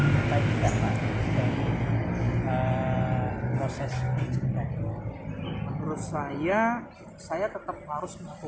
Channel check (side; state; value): both; identical; correlation 1.00